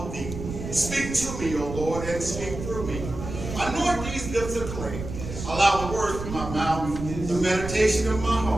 of thee. Speak to me, O Lord, and speak through me. Anoint these lips of clay. Allow the words of my mouth, the meditation of my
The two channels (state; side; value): noise; right; rumble, 8 dB below the sound